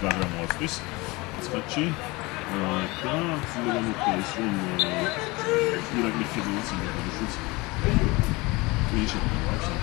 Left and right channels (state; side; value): quieter; right; 23.6 dB